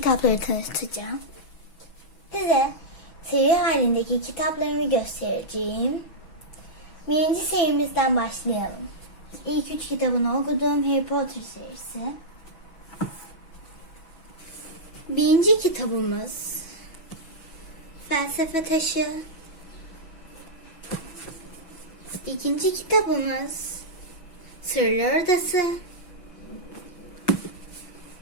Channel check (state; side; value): late; right; 6.1 ms